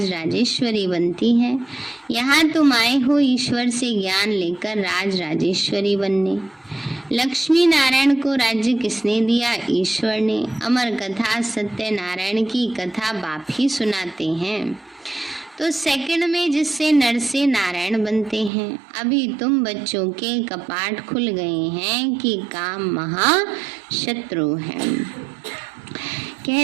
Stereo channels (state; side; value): drops out; left; at 18.5 s